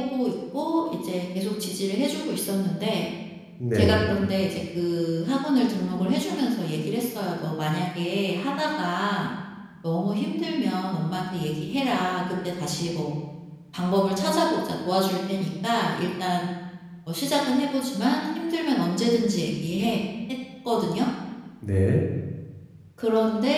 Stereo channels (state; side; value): identical; both; correlation 1.00